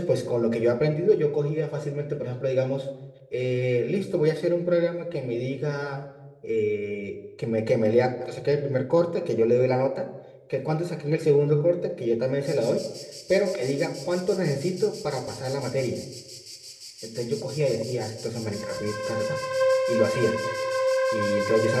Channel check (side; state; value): both; identical; correlation 1.00